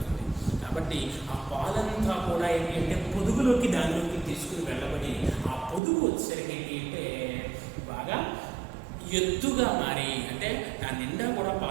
కాబట్టి ఆ పాలంతా కూడా ఏంటి అంటే పొదుగులోకి దానిలోకి తీసుకుని వెళ్ళబడి ఆ పొదుగు వచ్చేసరికి ఏంటి అంటే బాగా ఎత్తుగా మారి అంటే దాని నిండా కూడా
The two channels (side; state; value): left; drops out; at 5.8 s